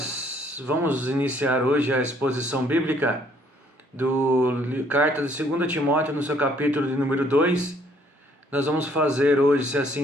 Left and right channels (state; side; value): normal; both; correlation 0.64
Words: vamos iniciar hoje a exposição bíblica do carta de 2 Timóteo, no seu capítulo de número 2. Nós vamos fazer hoje, se